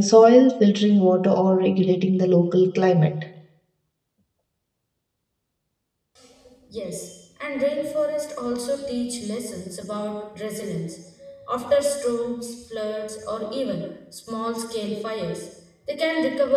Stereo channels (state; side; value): identical; both; correlation 1.00